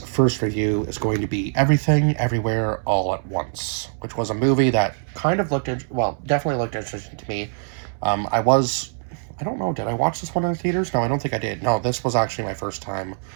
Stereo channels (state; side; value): silent; left; digital silence